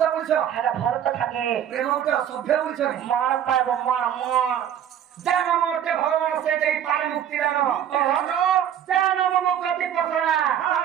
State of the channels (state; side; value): quieter; left; 9.7 dB